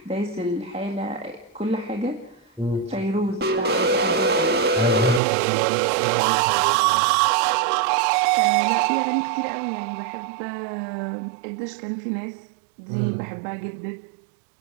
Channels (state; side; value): drops out; left; at 5.2 s